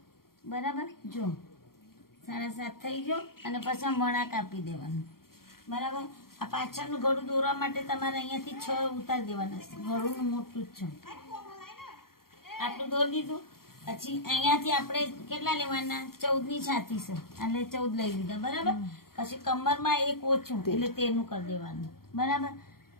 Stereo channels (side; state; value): right; late; 0.93 ms